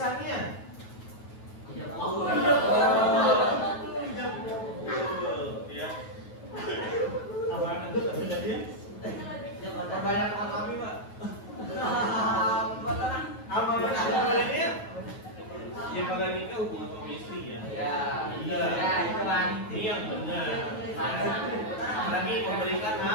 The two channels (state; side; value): late; right; 9.3 ms